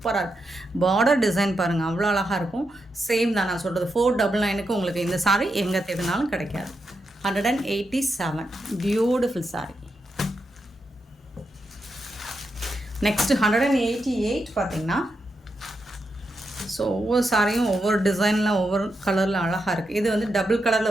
இருக்குது. பார்டர் டிசைன் பாருங்கள், அவ்வளோ அழகாக இருக்கும். சேம் தான் நான் சொல்கிறது. 499க்கு உங்களுக்கு இந்த சாரி எங்கே தேடினாலும் கிடைக்காது. 187 பியூட்டிஃபுல் சாரி. நெக்ஸ்ட்டு 188 பார்த்திங்கன்னா, ஸோ ஒவ்வொரு சாரியும் ஒவ்வொரு டிசைனில் ஒவ்வொரு கலரில் அழகாக இருக்குது. இது வந்து டபுள்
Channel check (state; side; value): normal; both; correlation 0.85